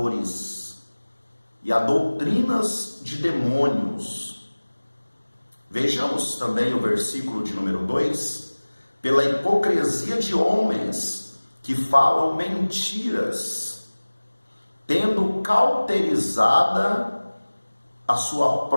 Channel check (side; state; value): both; inverted; correlation -1.00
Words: e a doutrinas de demônios, Vejamos também o versículo de número 2: pela hipocrisia de homens que falam mentiras, tendo cauterizada a sua